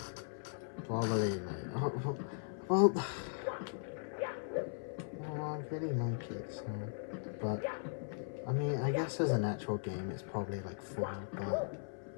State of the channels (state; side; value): silent; right; 52 dB below the other